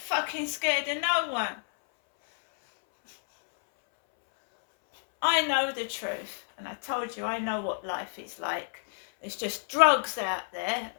scared of no one. I know the truth, and I told you I know what life is like. There's just drugs out there,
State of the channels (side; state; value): right; silent; 58 dB below the other